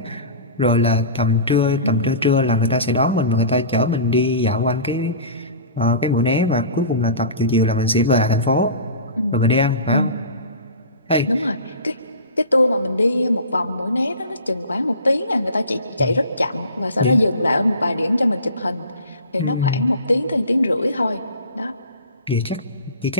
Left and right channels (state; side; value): inverted; both; correlation -0.37